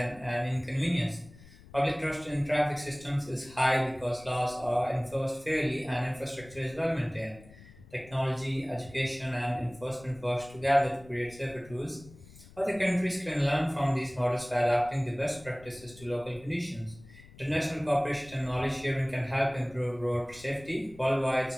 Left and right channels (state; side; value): noise; left; rumble, 21 dB below the sound